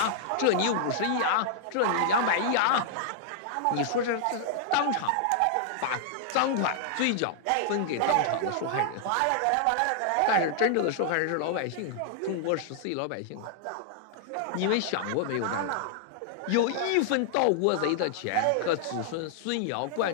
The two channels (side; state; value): both; different; correlation -0.01